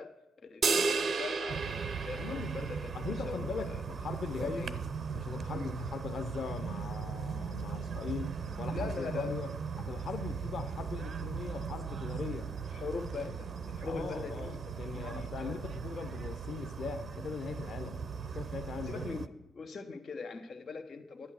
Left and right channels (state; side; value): normal; both; correlation 0.74